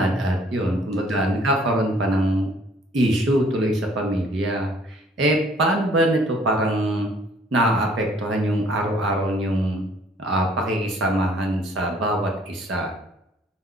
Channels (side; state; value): both; normal; correlation 0.59